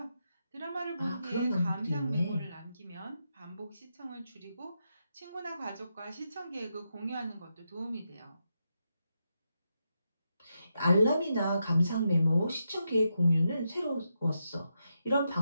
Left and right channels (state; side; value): inverted; both; correlation -0.85